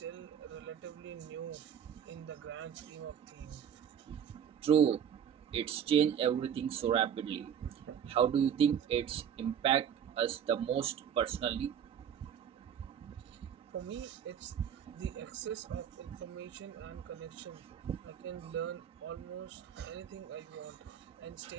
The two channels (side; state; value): left; quieter; 8.6 dB